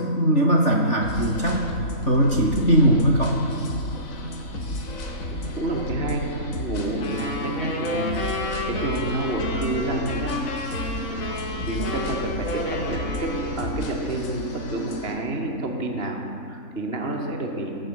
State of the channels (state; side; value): late; right; 3.4 ms